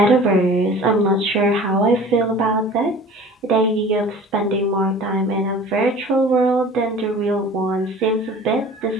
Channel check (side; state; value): both; normal; correlation 0.43